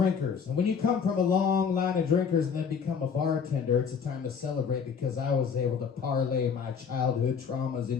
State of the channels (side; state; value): right; quieter; 6.5 dB